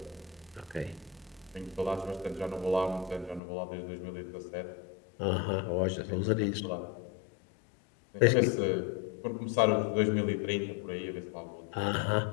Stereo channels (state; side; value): drops out; right; at 3.4 s